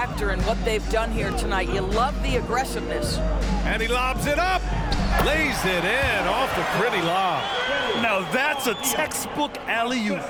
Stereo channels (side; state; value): both; identical; correlation 1.00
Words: in what they've done here tonight. You love the aggressiveness. And he lobs it up. Lays it in off the pretty lob. Now that's a textbook alley-oop.